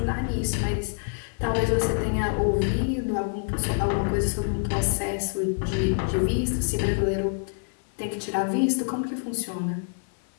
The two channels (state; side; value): silent; right; digital silence